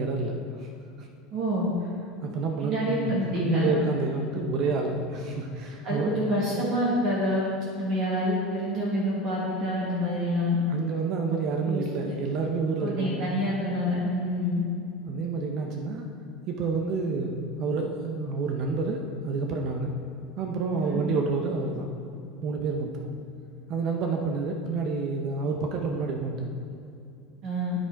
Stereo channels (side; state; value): both; normal; correlation 0.31